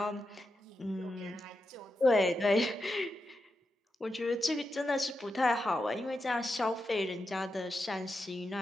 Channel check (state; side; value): normal; both; correlation 0.87